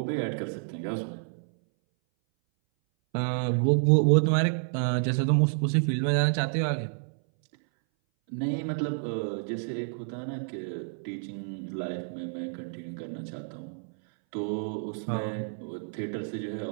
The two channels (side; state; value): left; silent; 58 dB below the other